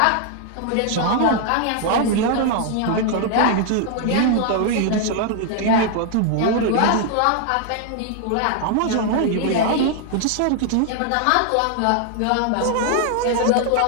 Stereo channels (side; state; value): both; different; correlation 0.00